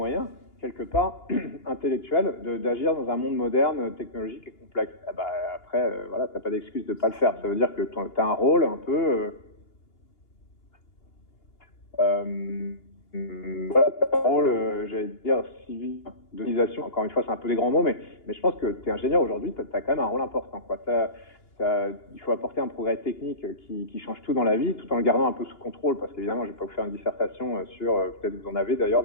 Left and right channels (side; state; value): right; late; 2.9 ms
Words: quelque part, intellectuels, d'agir dans un monde moderne, technologique et complexe. Après, t'as pas d'excuse de pas le faire. Ça veut dire que tu as un rôle un peu... t'as un rôle, j'allais dire, civil, d'organisation. Encore une fois, c'est un peu des grands mots, mais je pense que tu es ingénieur aujourd'hui, tu as quand même un rôle important, quoi. Il faut apporter un progrès technique qui change tout dans la vie, tout en le gardant un peu sous contrôle, parce qu'évidemment, je vais pas vous faire une dissertation sur, peut-être vous en avez d'ailleurs